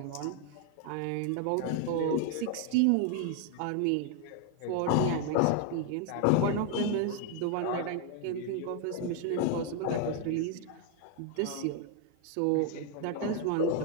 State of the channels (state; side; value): different; both; correlation 0.00